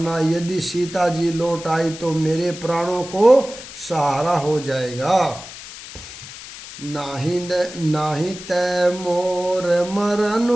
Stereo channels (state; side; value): noise; left; hiss, 14 dB below the sound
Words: यदि सीता जी लौट आई तो मेरे प्राणों को सहारा हो जाएगा। नाही तै मोर